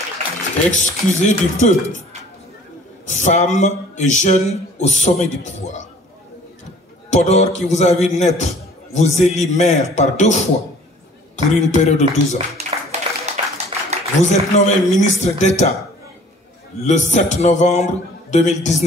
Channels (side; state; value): both; normal; correlation 0.52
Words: Excusez du peu, femme et jeune au sommet du pouvoir. Podor qui vous a vu naître, vous élit maire par 2 fois pour une période de 12 ans. Vous êtes nommé ministre d'État le 7 novembre